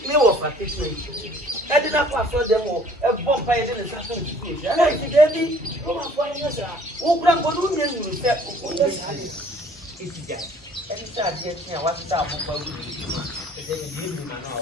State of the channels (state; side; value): normal; both; correlation 0.55